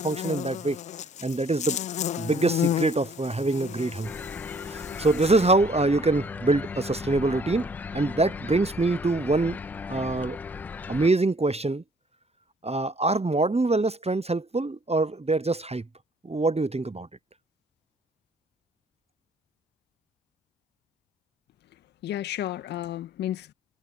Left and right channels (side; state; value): both; normal; correlation 0.60